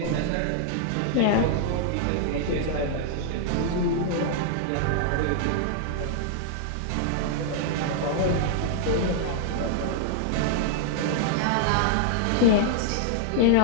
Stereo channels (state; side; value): different; both; correlation -0.01